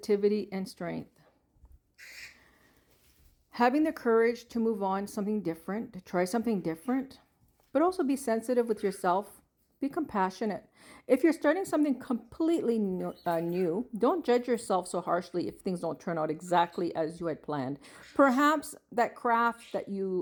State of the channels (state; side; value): identical; both; correlation 1.00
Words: and strength. Having the courage to move on, something different, to try something different, but also be sensitive with yourself. Be compassionate. If you're starting something completely new, don't judge yourself so harshly if things don't turn out exactly as you had planned. Perhaps that craft that